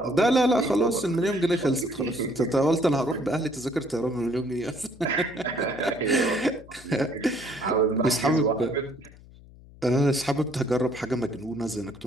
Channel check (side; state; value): left; noise; hum, 22 dB below the sound